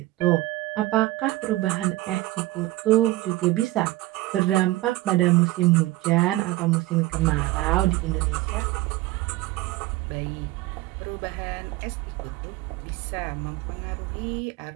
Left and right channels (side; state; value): left; quieter; 18.0 dB